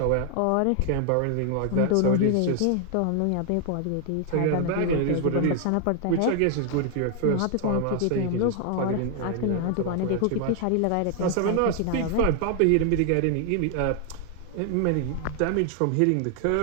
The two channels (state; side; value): different; both; correlation 0.00